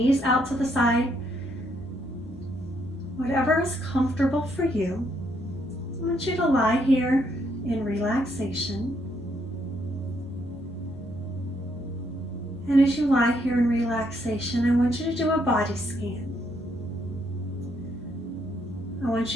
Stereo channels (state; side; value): normal; both; correlation 0.73